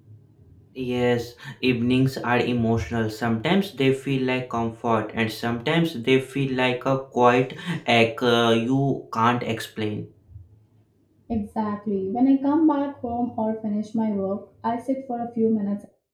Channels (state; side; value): identical; both; correlation 1.00